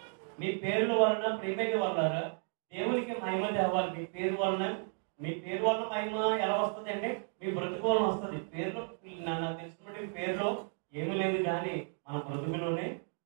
మీ పేర్ల వలన ప్రేమని వల్ల దేవునికి మహిమ తేవాలి. మీ పేరు వలన మహిమ ఎలా వస్తుంది అంటే మీ బ్రతుకు వలన వస్తుంది. పేరులో నాకు తెలిసినటువంటి పేరులో ఏమీ లేదు, కానీ మన బ్రతుకులోనే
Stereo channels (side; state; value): left; silent; 55 dB below the other